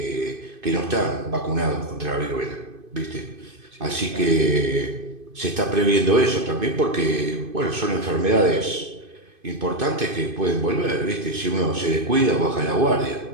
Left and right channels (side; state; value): left; late; 2.5 ms